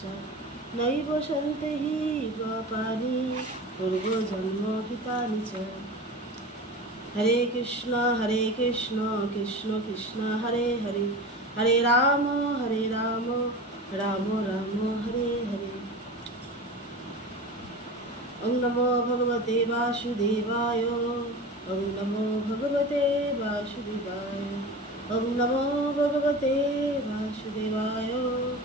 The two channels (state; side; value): normal; both; correlation 0.31